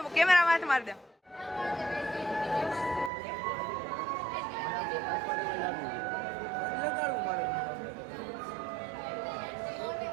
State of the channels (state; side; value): drops out; left; at 3.1 s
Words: કેમેરામાં હાથ માર દે.